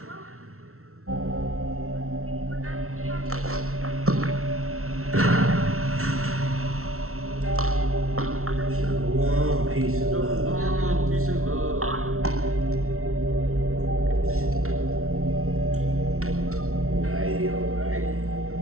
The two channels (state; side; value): late; left; 0.63 ms